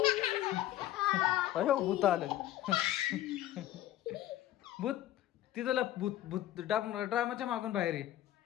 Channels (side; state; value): right; quieter; 13.6 dB